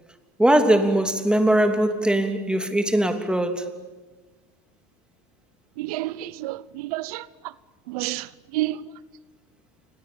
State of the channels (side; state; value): both; normal; correlation 0.78